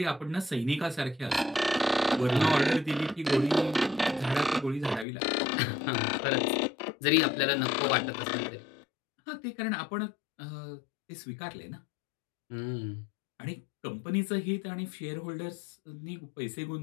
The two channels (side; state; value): right; drops out; at 5.1 s